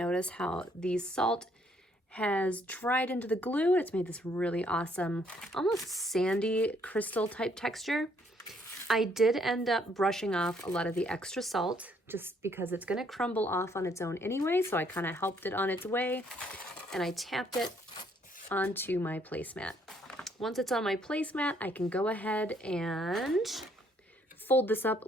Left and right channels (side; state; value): both; normal; correlation 0.67